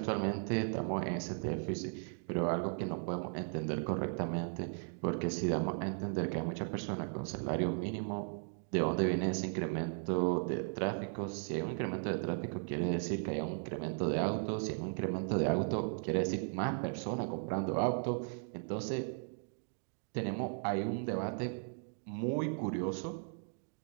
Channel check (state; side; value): silent; left; 53 dB below the other